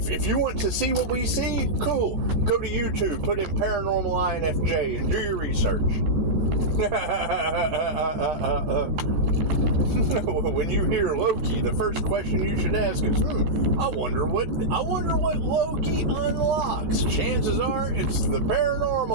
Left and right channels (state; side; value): late; left; 15 ms